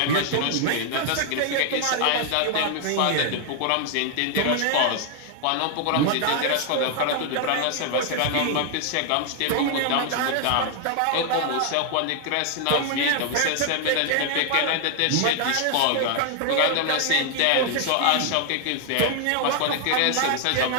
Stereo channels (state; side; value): different; both; correlation 0.00